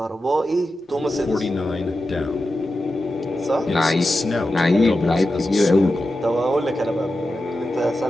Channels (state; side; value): normal; both; correlation 0.91